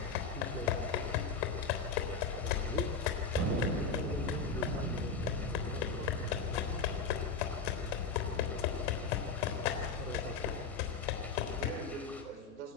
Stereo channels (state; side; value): quieter; right; 4.9 dB